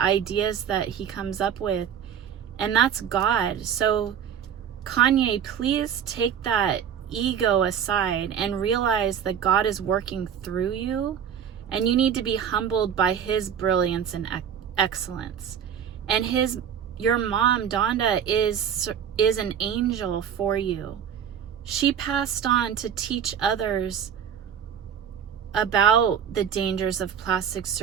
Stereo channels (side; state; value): left; quieter; 8.5 dB